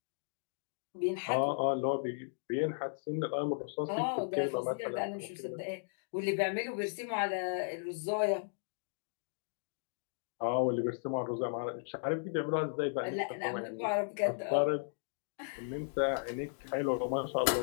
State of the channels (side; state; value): right; silent; digital silence